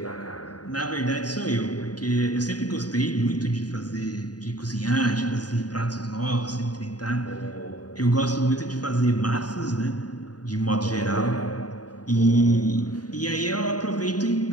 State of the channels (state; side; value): late; right; 0.68 ms